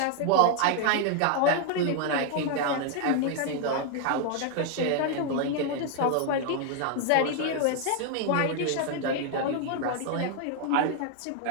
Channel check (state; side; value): different; both; correlation 0.00